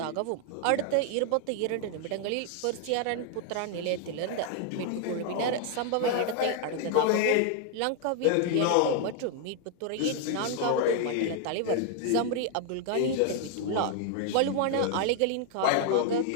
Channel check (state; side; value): different; both; correlation 0.00